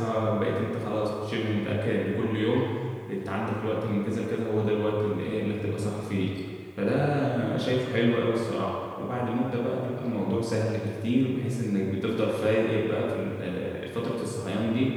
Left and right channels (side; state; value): both; identical; correlation 1.00